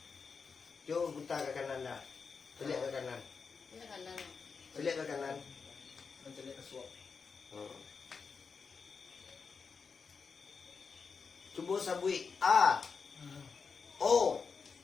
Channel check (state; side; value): quieter; right; 5.3 dB